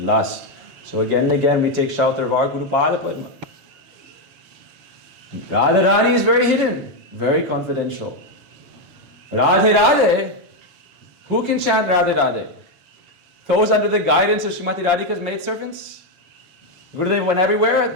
So again and again we take shelter of our Guru Pada Padma. Radharani is very hidden, very confidential. Radhe Radhe, who can chant Radhe Radhe? Those under the guidance of Srimati Radhika's maidservants? Gurudev went everywhere,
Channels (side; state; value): left; late; 7.2 ms